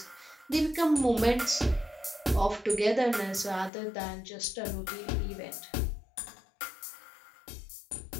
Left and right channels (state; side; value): drops out; right; at 3.7 s